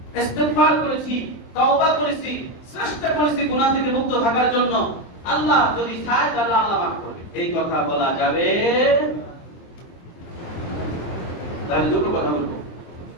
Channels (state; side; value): late; right; 23 ms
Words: ইস্তিগফার করেছি, তওবা করেছি, চেষ্টা করেছি গুনাহ থেকে মুক্ত থাকার জন্য, আল্লাহ যদি চায় তাহলে আল্লাহ মাফ করবে, এই কথা বলা যাবে? তাহলে দুটো কথা বলবো।